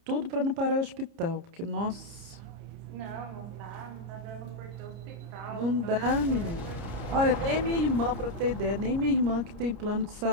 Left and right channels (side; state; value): left; late; 29 ms